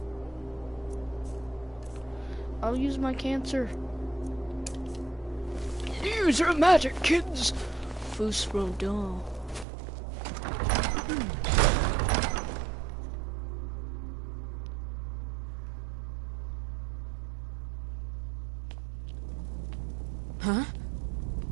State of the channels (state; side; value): drops out; left; at 9.7 s